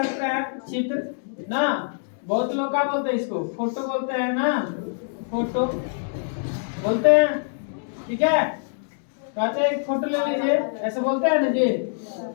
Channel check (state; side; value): silent; right; digital silence